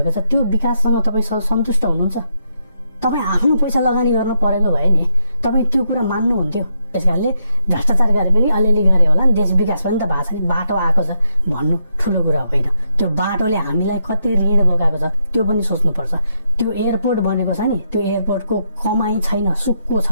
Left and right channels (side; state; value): both; inverted; correlation -0.72